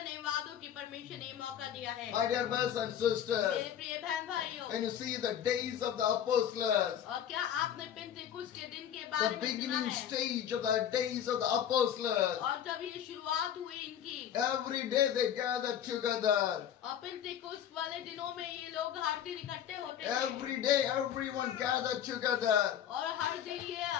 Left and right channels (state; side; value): quieter; right; 9.8 dB